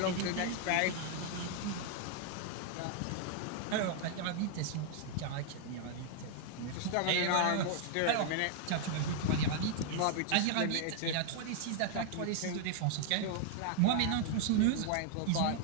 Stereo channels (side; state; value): both; different; correlation 0.00